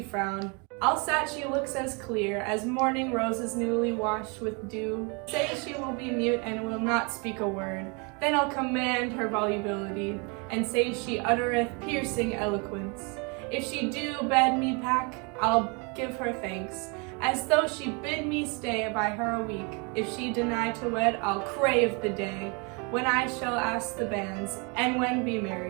frown. Alsat she looks as clear as morning roses newly washed with dew. Say she will be mute and will not speak a word. Then I'll command her volubility, and say she uttereth piercing eloquence. If she do bid me pack, I'll give her thanks, as though she bid me stay by her a week. If she deny to wed, I'll crave the day when I shall ask the banns, and when be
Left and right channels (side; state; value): left; quieter; 32.4 dB